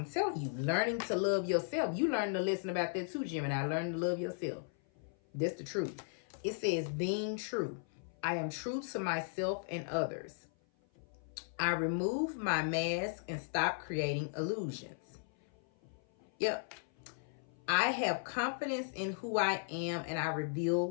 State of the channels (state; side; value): silent; right; 53 dB below the other